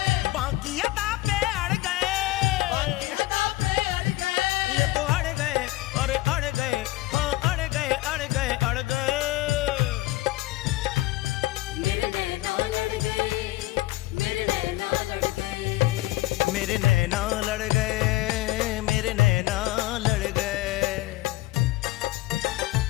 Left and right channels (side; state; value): right; quieter; 18.1 dB